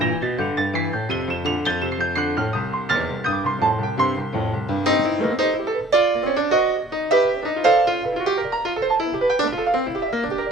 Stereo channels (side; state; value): both; normal; correlation 0.57